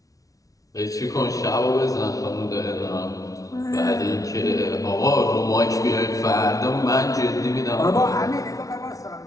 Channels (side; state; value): right; late; 0.17 ms